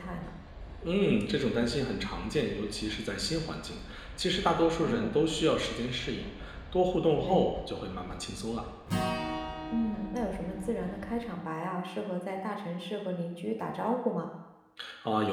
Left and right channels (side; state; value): both; identical; correlation 1.00